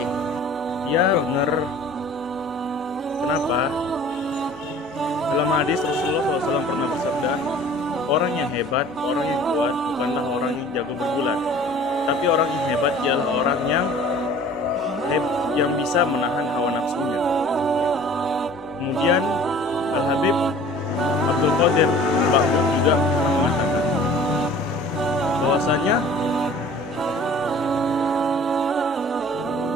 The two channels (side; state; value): both; normal; correlation 0.47